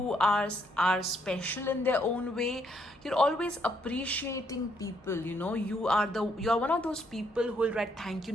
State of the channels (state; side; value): normal; both; correlation 0.72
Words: are special in their own way. You're always appreciating people. You are one of those people who will write thank you